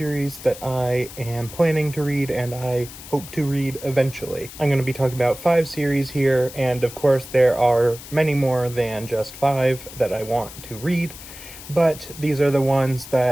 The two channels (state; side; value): noise; left; hiss, 15 dB below the sound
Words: that I am planning to read and I hope to read eventually. I'm going to be talking about 5 series here, and of course there are many more than just 5 that I want to read, but these are the ones